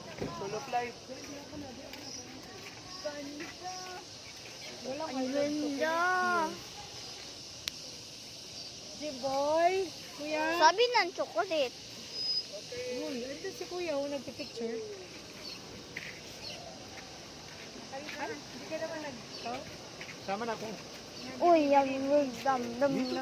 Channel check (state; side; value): identical; both; correlation 1.00